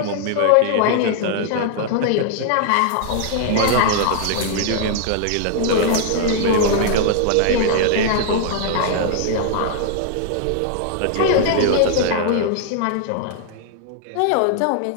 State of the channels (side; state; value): both; different; correlation 0.00